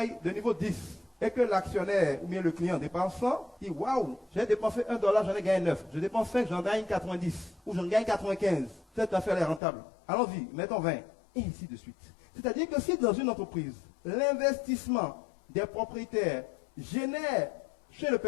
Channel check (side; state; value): right; drops out; at 9.6 s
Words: de niveau 10, et que l'actionnaire ou bien le client dépense 100, il dit waouh, j'ai dépensé $1, j'en ai gagné 9. Je dépense 5, j'en gagne 90. Ou j'en gagne 95. Cette affaire est rentable. Allons-y, mettons 20. Et ainsi de suite. C'est-à-dire que si dans une entreprise, l'investissement des propriétaires génère chez le